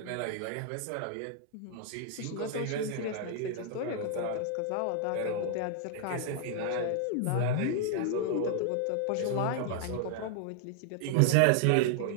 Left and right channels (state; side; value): different; both; correlation 0.00